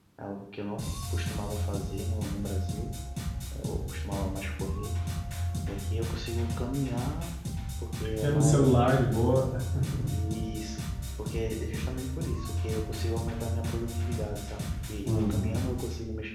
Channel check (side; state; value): both; identical; correlation 1.00